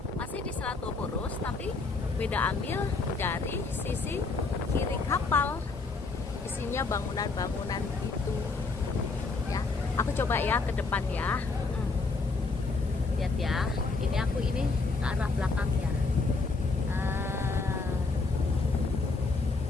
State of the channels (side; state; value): right; quieter; 3.9 dB